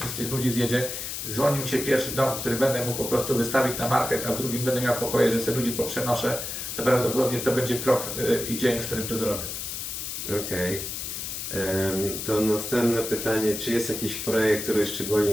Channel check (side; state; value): left; noise; hiss, 5 dB below the sound